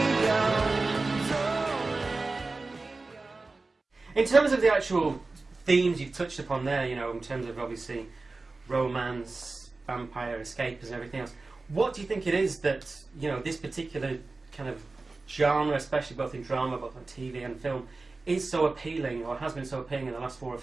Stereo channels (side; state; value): left; quieter; 3.6 dB